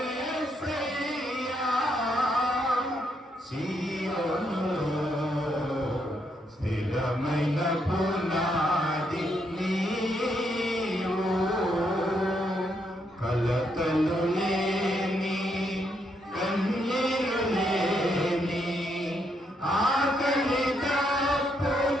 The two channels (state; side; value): normal; both; correlation 0.77